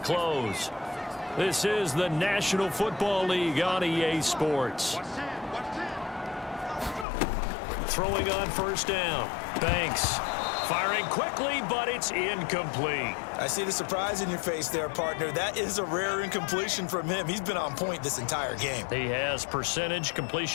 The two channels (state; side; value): drops out; right; at 7.1 s